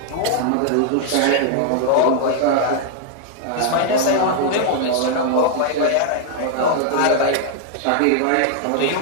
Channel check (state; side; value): different; both; correlation -0.01